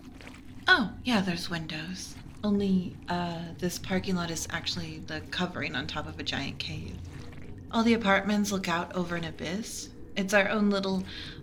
Oh, yeah, there's windows. Only, this parking lot is actually the covering on top of a giant cave. All the apartments look out over an abyss. It's our own little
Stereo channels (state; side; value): identical; both; correlation 1.00